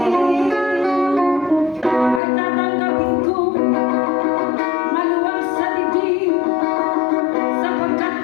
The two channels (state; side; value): drops out; right; at 2.2 s